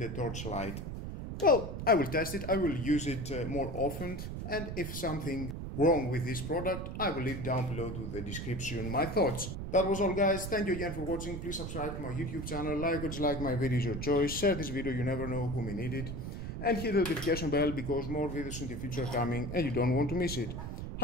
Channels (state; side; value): noise; right; rumble, 6 dB below the sound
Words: a torchlight. Well, I will test it, I will use it more often, and if something wrong with this product, I will leave down below to the description my thoughts. That was all guys, thank you again for watching. Please subscribe to my YouTube channel, like or dislike my videos, your choice. Share this video, you never know who may need it. And hit the notification bell because more videos in the future are coming and you don't want to miss it.